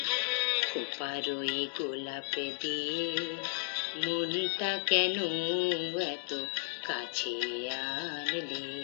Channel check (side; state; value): right; silent; digital silence